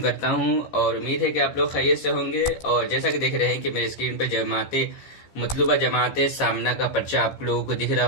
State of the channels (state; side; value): late; right; 15 ms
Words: हूं और उम्मीद है कि आप लोग खैरियत से होंगे। और जैसा कि देख रहे हैं कि मेरे स्क्रीन पर मतलूबा जमात सामना का पर्चा आप लोगों को दिख रहा